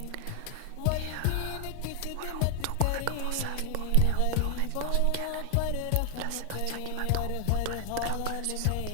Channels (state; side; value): different; both; correlation 0.00